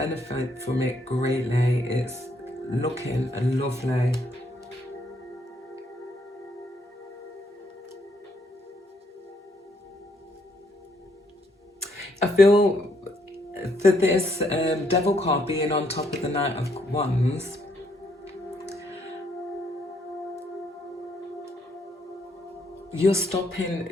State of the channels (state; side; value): normal; both; correlation 0.71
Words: from it greatly. It's looking lovely. I feel for this Devil card being on top of the Knight of Wands, you're